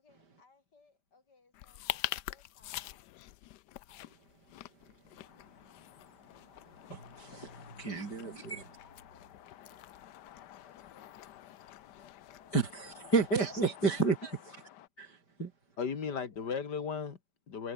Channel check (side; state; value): right; late; 5.1 ms